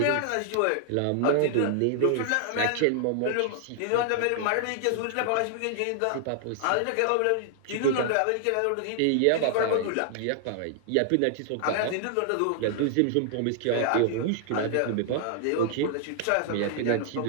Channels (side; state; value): both; different; correlation 0.00